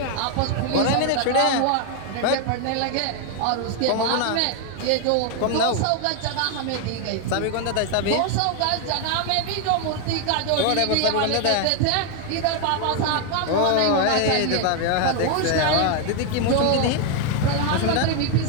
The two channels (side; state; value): both; different; correlation 0.01